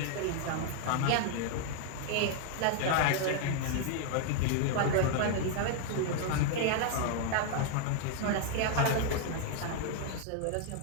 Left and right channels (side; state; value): both; different; correlation 0.00